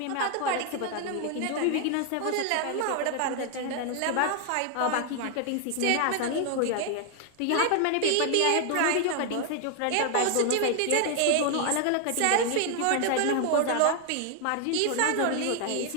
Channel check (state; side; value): different; both; correlation 0.00